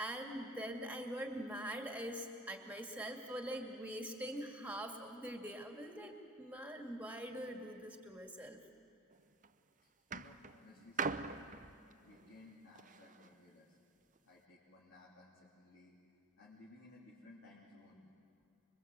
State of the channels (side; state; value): both; normal; correlation 0.42